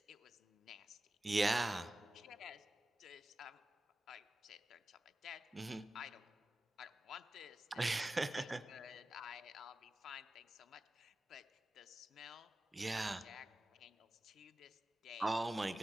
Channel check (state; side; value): normal; both; correlation 0.94